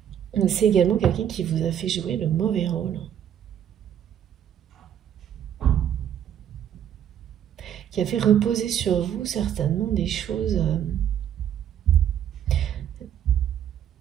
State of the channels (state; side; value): quieter; left; 9.8 dB